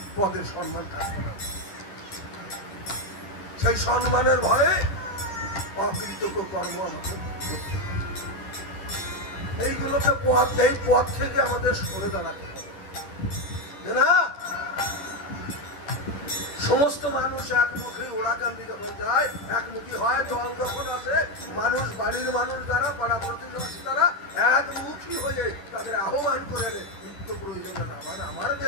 পদের সম্মান থাকবে না। সেই সম্মানের ভয়ে অকৃতজ্ঞ কর্ম আমাকে এইগুলোকে এই পথ থেকে আমাদের সরে দাঁড়াতে হবে না। সমস্ত মানুষ একমুখী ওড়াকান্দি যখন যায়, একমুখী হয়, দল যখন আসে, মানুষ বাড়ির মানুষ যারা পাড়া প্রতিবেশী যারা একমুখী হয়ে তাদের আহ্বান করে নিত্য প্রয়োজনে না। মানে আমার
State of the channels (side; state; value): right; late; 11 ms